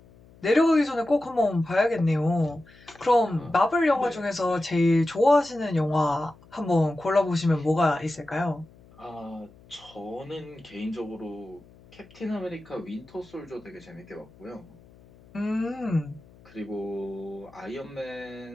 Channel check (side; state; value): left; noise; hum, 25 dB below the sound